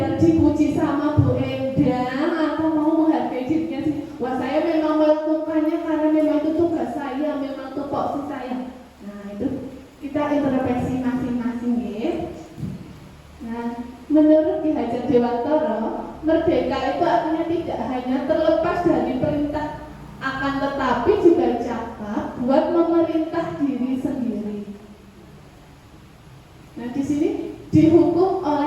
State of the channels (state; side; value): identical; both; correlation 1.00